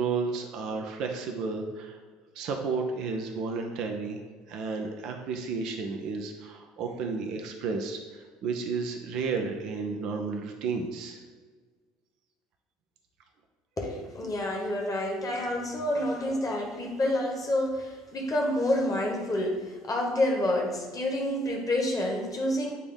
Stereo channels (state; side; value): normal; both; correlation 0.63